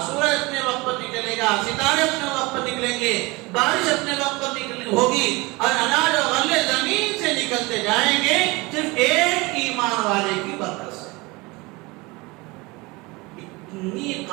سورج اپنے وقت پر نکلے گا، ستارے اپنے وقت پر نکلیں گے، بارش اپنے وقت پر ہوگی، اور اناج اور غلے زمین سے نکلتے جائیں گے صرف ایک ایمان والے کی برکت سے۔ اتنی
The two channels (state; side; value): quieter; left; 24.2 dB